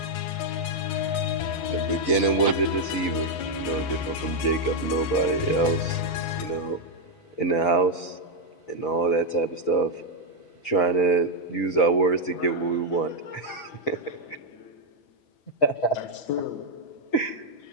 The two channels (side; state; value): right; late; 5.4 ms